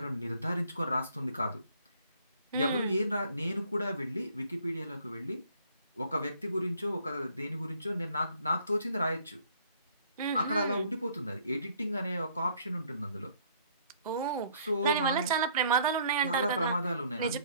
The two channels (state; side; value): inverted; both; correlation -0.60